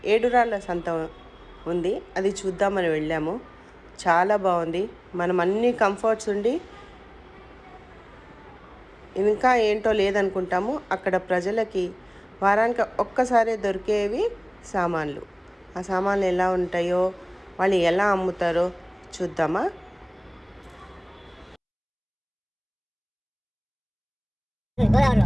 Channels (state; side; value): identical; both; correlation 1.00